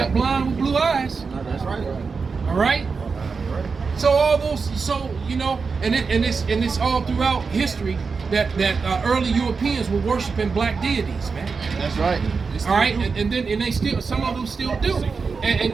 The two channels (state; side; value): quieter; left; 4.9 dB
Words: Blind with blue eyes. No, that's right. All right. So all those, and it's all throughout history that early Europeans were worshiping black deities, man. That's right. All right, and they still, some of them still do.